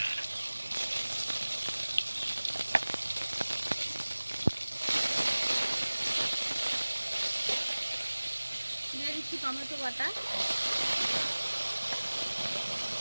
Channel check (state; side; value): inverted; both; correlation -1.00